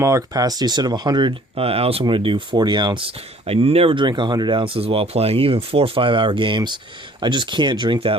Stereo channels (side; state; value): both; normal; correlation 0.55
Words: capacity. Instead of 100 ounce, I'm going to do 40 ounce. I never drink 100 ounces while playing, even 4 or 5 hour games. I just can't drink